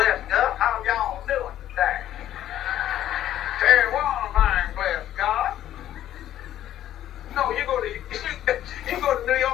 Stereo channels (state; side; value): quieter; right; 12.1 dB